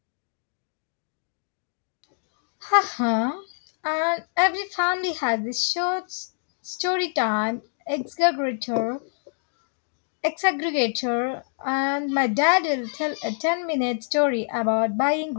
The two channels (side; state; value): right; silent; digital silence